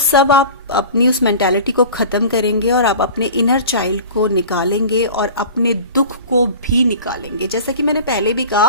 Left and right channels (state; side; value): inverted; both; correlation -0.38